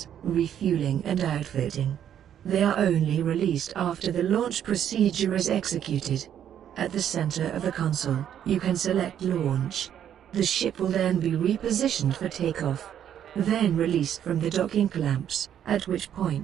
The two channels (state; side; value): quieter; left; 9.8 dB